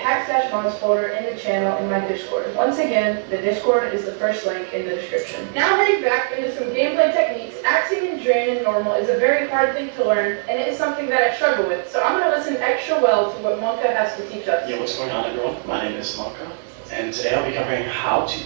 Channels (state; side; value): silent; left; digital silence